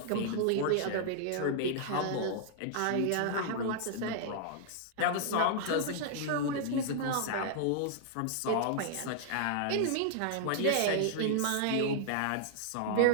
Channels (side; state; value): both; different; correlation -0.01